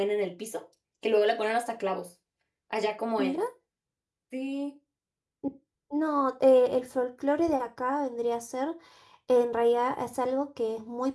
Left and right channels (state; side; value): identical; both; correlation 1.00